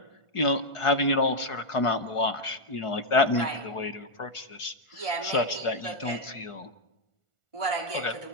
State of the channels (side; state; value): right; late; 1.4 ms